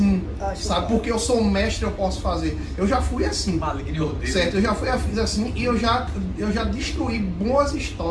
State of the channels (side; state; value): both; identical; correlation 1.00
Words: Sabe? Porque eu sou um mestre, eu posso fazer. Eu já fui assim. Maligno e ordeiro. Certo? Eu já fui assim e eu já destruí boas